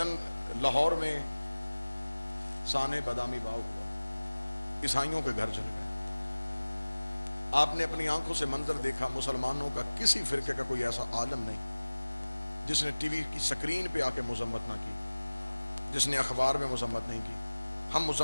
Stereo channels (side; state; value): both; inverted; correlation -1.00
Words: لاہور میں سانے بادامی باغ ہوا، عیسائیوں کے گھر چل گئے۔ آپ نے اپنی آنکھوں سے منظر دیکھا، مسلمانوں کا کسی فرقے کا کوئی ایسا عالم نہیں جس نے ٹی وی کی سکرین پہ آ کے مذمت نہ کی، جس نے اخبار میں مذمت نہیں کی۔ ہم